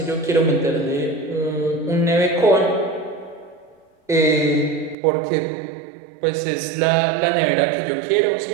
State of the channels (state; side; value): drops out; left; at 5.0 s